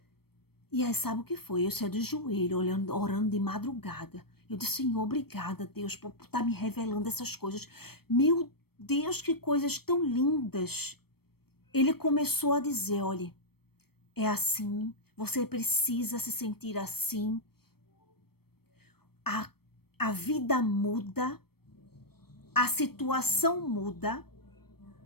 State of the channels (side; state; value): right; late; 0.96 ms